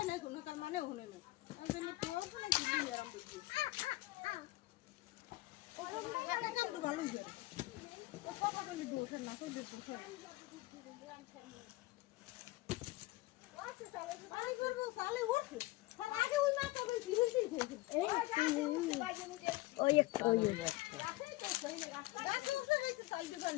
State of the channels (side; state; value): right; quieter; 19.7 dB